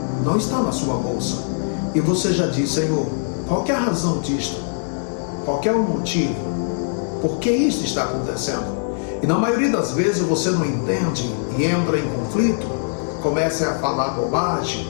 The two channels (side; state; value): right; silent; digital silence